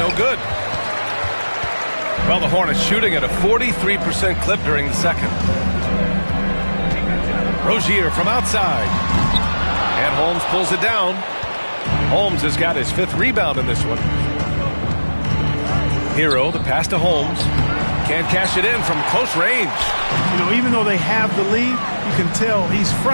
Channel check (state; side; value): inverted; both; correlation -1.00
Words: good. Well, the Hornets shooting at a 43% clip during the second. Rozier from outside. And Holmes pulls it down. Holmes has got his 5th rebound in this one. Hero, the pass to Holmes. Can't cash it in from close range. You know, even though they have the lead, you can tell he's